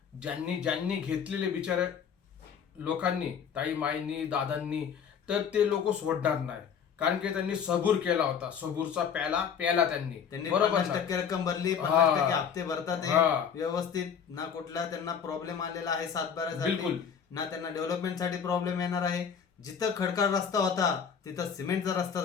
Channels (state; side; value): quieter; right; 7.3 dB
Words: ज्यांनी घेतलेले बिचारे लोकांनी, ताई माईंनी दादांनी, तर ते लोक सोडणार नाही. कारण की त्यांनी सबूर केला होता. सबूरचा प्याला त्यांनी बरोबर 50% रक्कम भरली, हा. 50% हप्ते भरतात हे हा. व्यवस्थित. ना कुठला त्यांना प्रॉब्लेम आलेला आहे 7-12 बिलकुल. ना त्यांना डेव्हलपमेंट साठी प्रॉब्लेम येणार आहे. जिथं खडकाळ रस्ता होता तिथं सिमेंटचा रस्ता